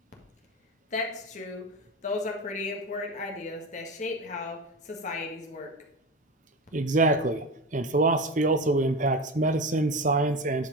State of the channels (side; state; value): both; normal; correlation 0.24